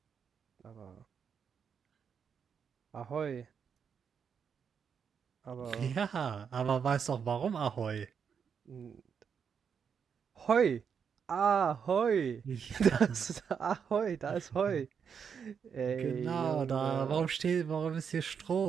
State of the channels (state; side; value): quieter; left; 6.9 dB